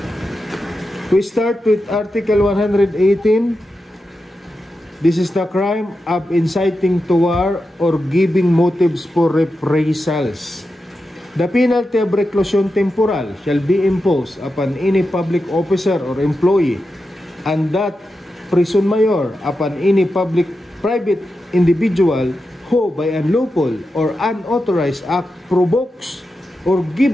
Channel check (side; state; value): both; normal; correlation 0.89